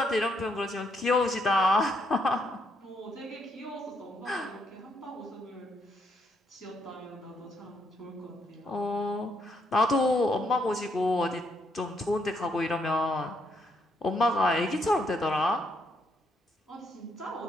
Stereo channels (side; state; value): both; normal; correlation 0.74